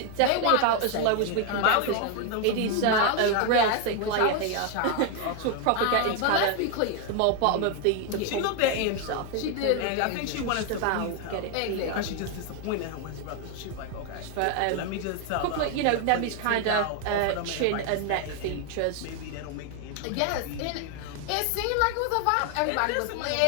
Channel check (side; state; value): both; different; correlation 0.01